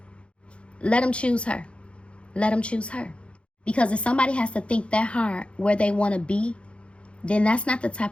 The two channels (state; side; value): late; right; 0.059 ms